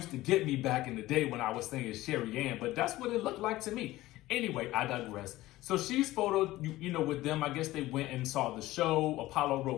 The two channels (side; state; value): right; quieter; 17.1 dB